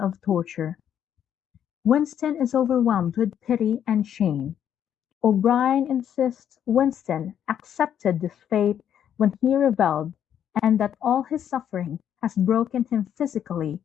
torture. Winston is overwhelmed with pity and shame. O'Brien insists Winston accepted this fate when he rebelled, and that all his suffering has broken him physically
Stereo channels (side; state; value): right; quieter; 9.5 dB